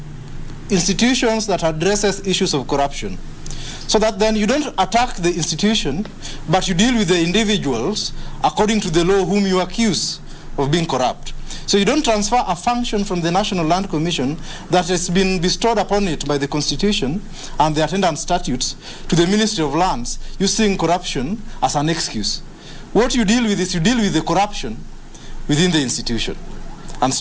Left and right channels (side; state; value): both; identical; correlation 1.00